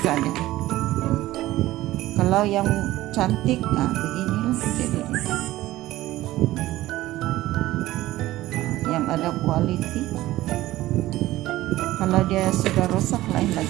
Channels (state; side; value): quieter; left; 16.3 dB